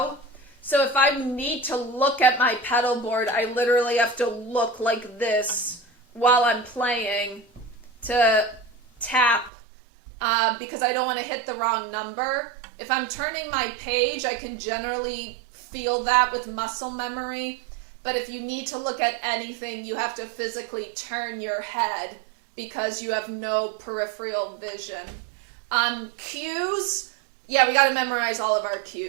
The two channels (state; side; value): drops out; left; at 9.5 s